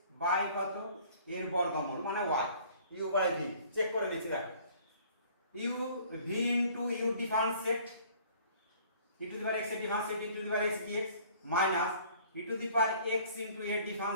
by কত এর বর্গমূল মানে y, u by v, check করে নিচ্ছি দেখো, u v into u differentiate e to the power x এর differentiate e to the power x dx minus e to the power x into এর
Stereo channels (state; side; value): inverted; both; correlation -0.54